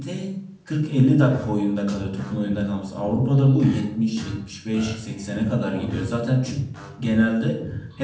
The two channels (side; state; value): both; identical; correlation 1.00